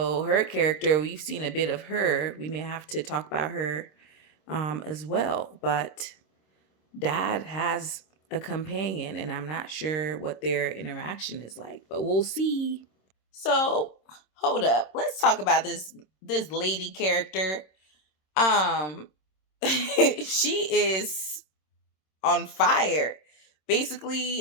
her character, we've seen a bit of her. We may have to talk about her as well. But dad has a companion, and I'm not sure what their interaction is like, but we'll see. So hold up, let's talk about this lady character. Um, she is on fire.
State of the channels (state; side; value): late; right; 26 ms